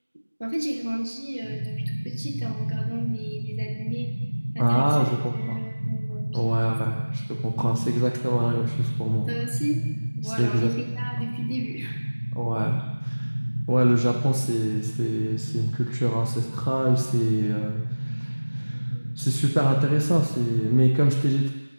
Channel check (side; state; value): both; inverted; correlation -1.00